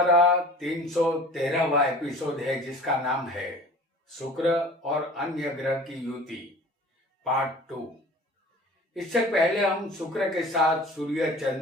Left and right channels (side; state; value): both; normal; correlation 0.43